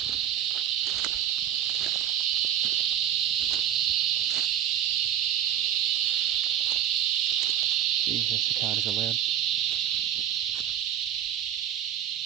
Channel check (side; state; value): left; quieter; 10.3 dB